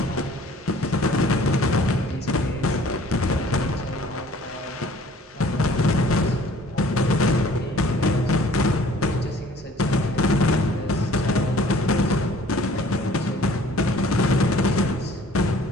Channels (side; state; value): both; normal; correlation 0.53